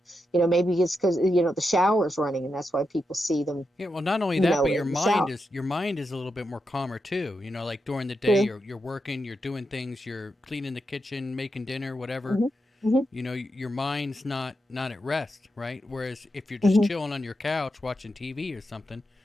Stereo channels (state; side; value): normal; both; correlation 0.86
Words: Maybe it's because, the shower's running, and that's why people see them. Yeah, well, not only that, but your mind is a little bit more calmer too. Like during the day, you're working, you're doing things, you're cleaning the kitchen, making dinner, whatever. Your mind's not at rest, right? Whereas if you're just chilling on your couch watching TV or something,